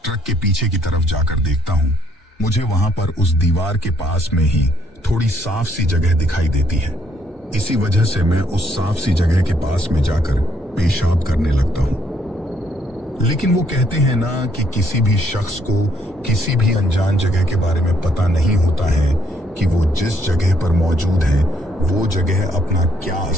ट्रक के पीछे की तरफ जाकर देखता हूँ। मुझे वहां पर उस दीवार के पास में ही थोड़ी साफ सी जगह दिखाई देती है। इसी वजह से मैं उस साफ सी जगह के पास में जाकर पेशाब करने लगता हूँ। लेकिन वो कहते हैं ना कि किसी भी शख्स को किसी भी अनजान जगह के बारे में पता नहीं होता है कि वो जिस जगह पर मौजूद है वो जगह अपना क्या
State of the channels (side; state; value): both; normal; correlation 0.70